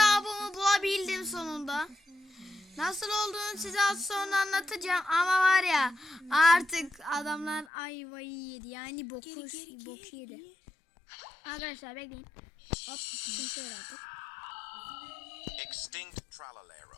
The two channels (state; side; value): drops out; right; at 7.7 s